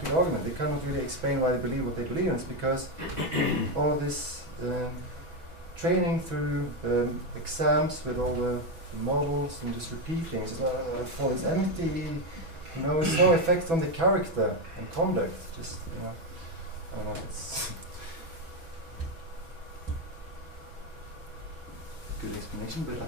good argument. They cannot really explain why they believe what they believe, and it's because all of this training through exams with all the models and just repeating for this empty. It's no effect on the character and conduct. Just I don't know. It's good explanation, but I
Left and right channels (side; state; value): left; late; 6.1 ms